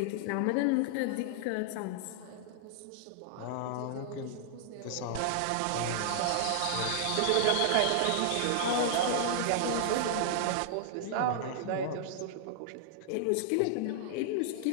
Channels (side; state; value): both; different; correlation -0.01